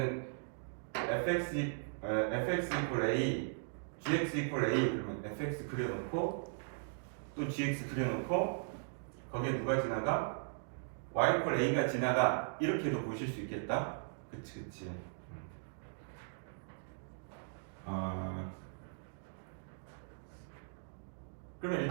fx equal a, gx equal a, 그러면 fx 그려놓고 또 gx 그려놓고 거기에 누가 지나가? y equal a가 지나가. 이렇게도 보실 수 있겠다. 그치. 그러면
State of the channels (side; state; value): left; silent; digital silence